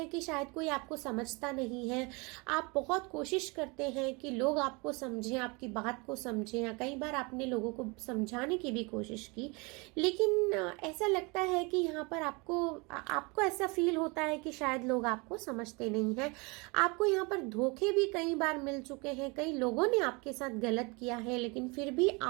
कि शायद कोई आपको समझता नहीं है। आप बहुत कोशिश करते हैं कि लोग आपको समझें, आपकी बात को समझें, या कई बार आपने लोगों को समझाने की भी कोशिश की, लेकिन ऐसा लगता है कि यहाँ पर आपको ऐसा फील होता है कि शायद लोग आपको समझते नहीं है। आपको यहाँ पर धोखे भी कई बार मिल चुके हैं, कई लोगों ने आपके साथ गलत किया है, लेकिन फिर भी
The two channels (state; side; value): quieter; left; 28.4 dB